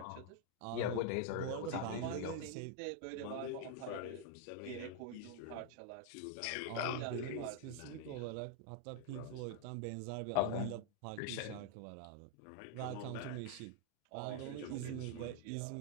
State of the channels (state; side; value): different; both; correlation 0.00